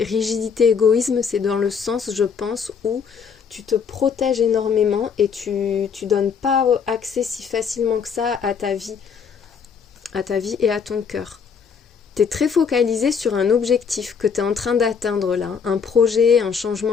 rigidité, égoïsme, c'est dans le sens, je pense, où tu te protèges énormément et tu donnes pas accès si facilement que ça à ta vie et à ton cœur. T'es très focalisé sur un objectif que t'es en train d'atteindre là, un projet, un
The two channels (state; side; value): quieter; right; 6.4 dB